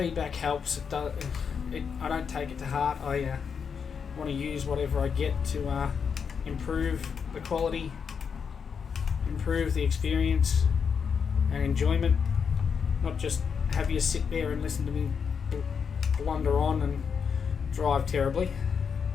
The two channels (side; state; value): right; quieter; 6.5 dB